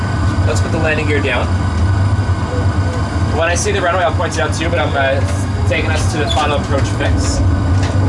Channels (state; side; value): identical; both; correlation 1.00